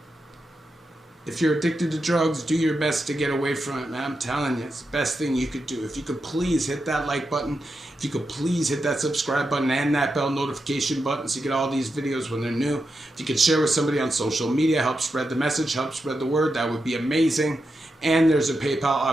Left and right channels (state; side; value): normal; both; correlation 0.87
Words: If you're addicted to drugs, do your best to get away from it, man. I'm telling you, it's the best thing you could do. If you could please hit that like button, if you could please hit that subscribe button and that bell notification button so you get all these videos when they're new. If you could share with somebody on social media, help spread the message, help spread the word, that would be amazing. And there's a PayPal